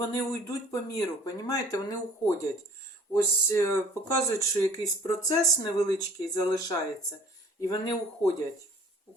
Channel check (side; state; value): both; normal; correlation 0.51